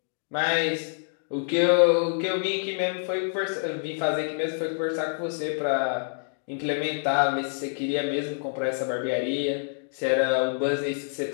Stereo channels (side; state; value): right; silent; digital silence